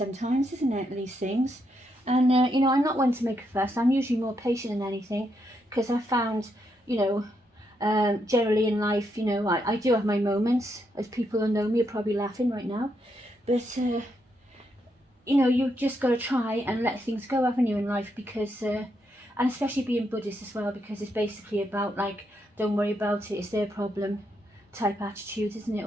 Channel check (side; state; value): both; normal; correlation 0.79